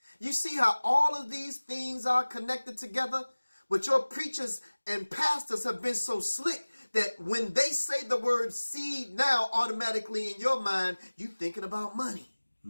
You see how all of these things are connected together? But your preachers and pastors have been so slick that when they say the word seed now, automatically in your mind, you thinking about money.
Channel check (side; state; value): both; inverted; correlation -1.00